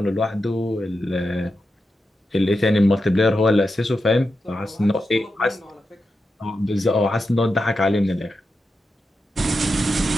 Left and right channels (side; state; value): both; normal; correlation 0.89